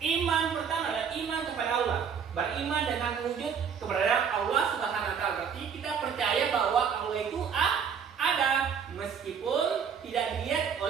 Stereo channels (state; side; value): quieter; left; 7.1 dB